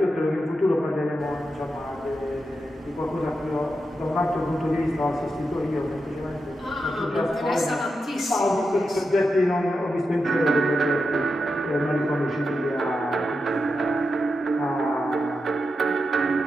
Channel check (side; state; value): both; normal; correlation 0.88